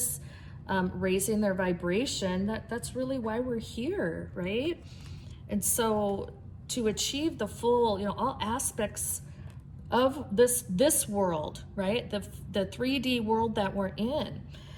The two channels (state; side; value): identical; both; correlation 1.00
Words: raising their vibration, that's really why we're here, right? And so to achieve the full, all aspects of this world, right? The 3D world that we're in.